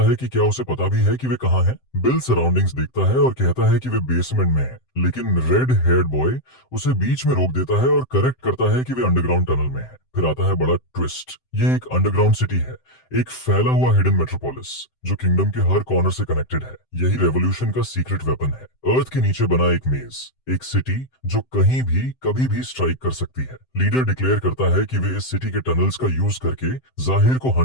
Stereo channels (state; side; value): late; right; 7.7 ms